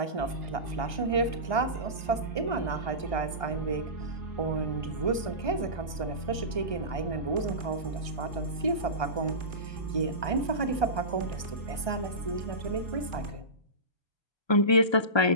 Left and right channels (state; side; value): late; right; 1.3 ms